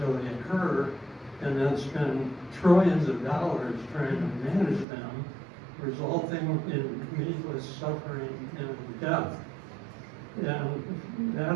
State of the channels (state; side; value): drops out; left; at 4.9 s